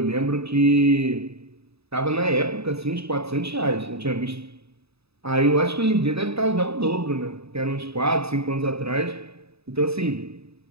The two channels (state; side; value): late; left; 0.78 ms